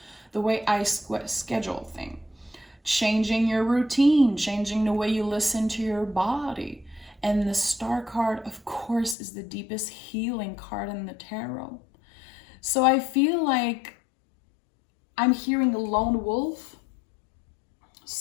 the way I schedule thing. Changing your routine, changing the way you listen to your body. And the Star card, of course, is the deepest healing card in the tarot. So I feel like I'm hearing a lone wolf.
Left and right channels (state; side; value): drops out; right; at 9.2 s